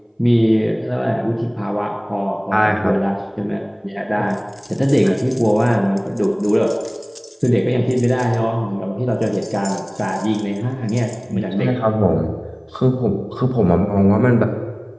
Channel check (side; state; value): both; identical; correlation 1.00